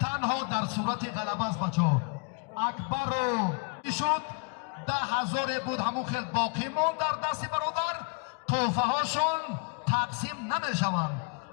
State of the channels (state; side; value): quieter; right; 33.5 dB